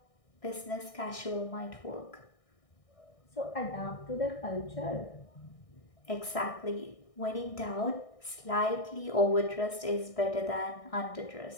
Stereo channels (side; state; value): right; late; 1.6 ms